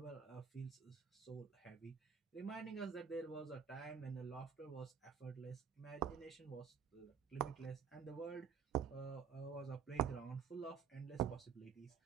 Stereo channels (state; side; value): quieter; left; 7.0 dB